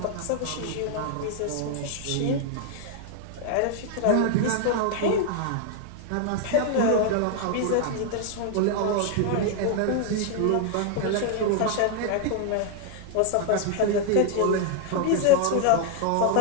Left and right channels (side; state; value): both; different; correlation 0.00